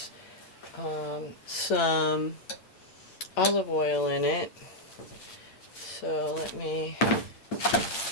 some olive oil in it. So let me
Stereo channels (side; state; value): right; late; 8.8 ms